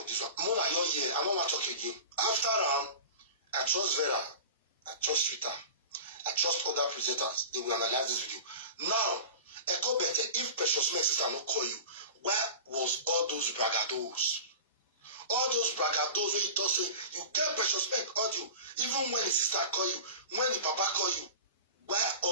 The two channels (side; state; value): both; inverted; correlation -0.35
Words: with this one? Mona, you're here. I don't want to talk again. After I trust Vera, I trust Twitter, I trust other presenters. They will analyze this video. Now, Echo Better, if Precious Meg sister not call you, where was all those bragados? All those bragados where you talk say you get Precious Meg audio, even when the sister call you, when the papa call you, where